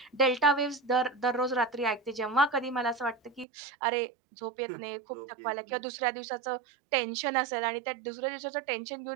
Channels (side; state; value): left; drops out; at 3.5 s